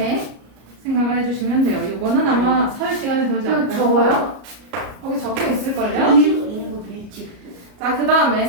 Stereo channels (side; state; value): left; late; 34 ms